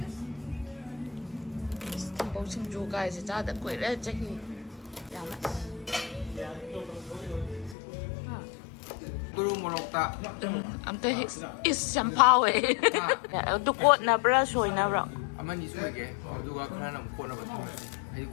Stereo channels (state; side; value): drops out; right; at 7.8 s